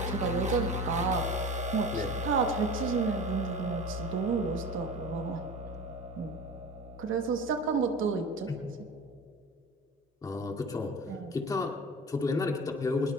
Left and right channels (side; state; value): both; normal; correlation 0.34